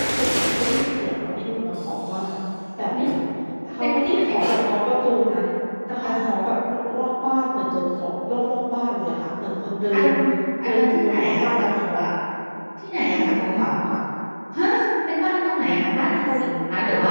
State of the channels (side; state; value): both; inverted; correlation -1.00